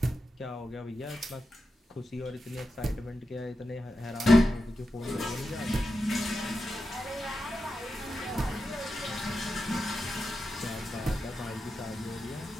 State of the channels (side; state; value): both; normal; correlation 0.90